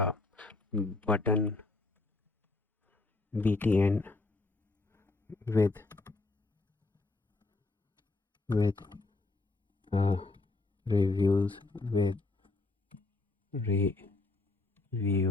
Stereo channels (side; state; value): right; quieter; 3.3 dB